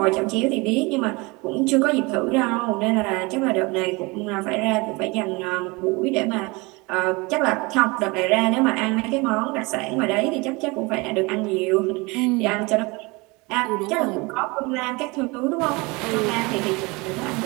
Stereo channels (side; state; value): left; quieter; 25.7 dB